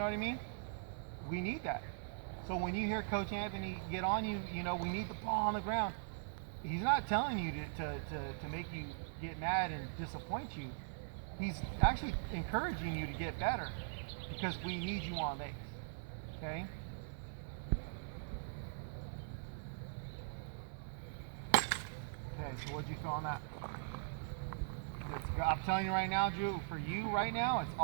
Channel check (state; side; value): silent; left; 50 dB below the other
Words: what I mean? We need that. So when you hear Coach Anthony get on you, we need the ball on the ground. He's not telling you to make you get mad and disappoint you. He's actually encouraging you to get better because we need you on base. Okay? Okay, so what'd you feel on that? I'm telling you right now, Drew, for you right now, it's